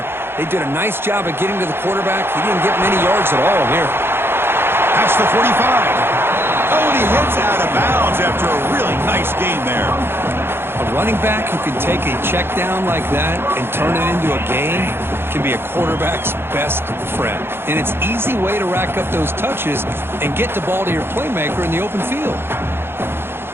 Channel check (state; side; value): late; left; 0.11 ms